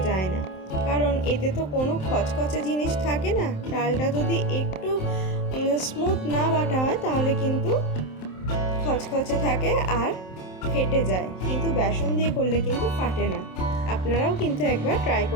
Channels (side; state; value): right; late; 27 ms